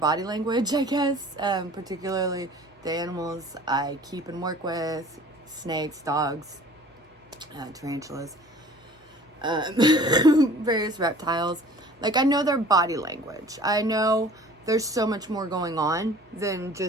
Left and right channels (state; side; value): normal; both; correlation 0.48